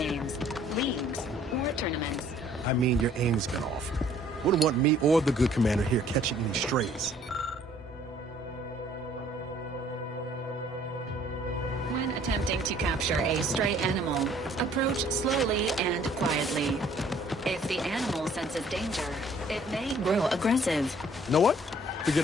leagues, or tournaments. I mean, your aim's been off. Wouldn't want me or the good commander here catching any strays. When attempting to capture a stray animal, approach slowly and quietly. If the animal senses danger, it may grow aggressive. You know what? Forget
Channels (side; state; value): both; normal; correlation 0.58